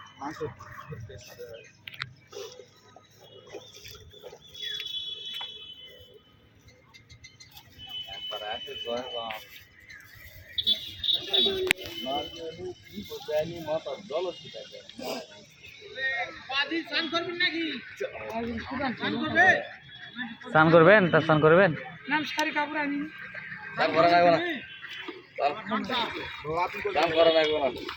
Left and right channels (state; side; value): identical; both; correlation 1.00